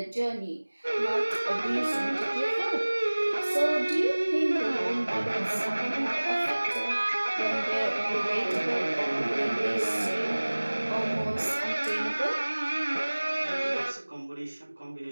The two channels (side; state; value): both; inverted; correlation -1.00